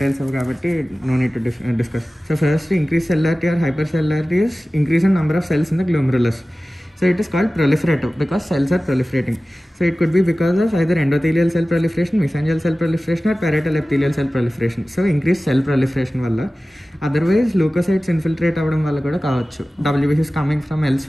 కాబట్టి no need to discuss. So first increase cellularity or hyper cellularity is increase in number of cells in the glomerulus. So it is called proliferative because cells are proliferating. So it could be because of either endothelial cell proliferation, mesangial cell proliferation or parietal epithelial cell proliferation. So increased cell proliferation valla. Otherwise leukocytes infiltrate avadam valla kuda kaavachu. WBC is coming from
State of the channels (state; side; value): normal; both; correlation 0.96